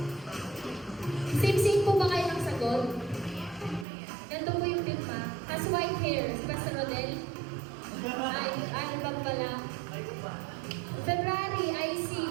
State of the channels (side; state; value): left; drops out; at 3.9 s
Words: Same-same po ba kayo ng sagot? Ganito po yung pirma. Has white hair. Si Pastor Rodel? Ay, album pala. February, IC.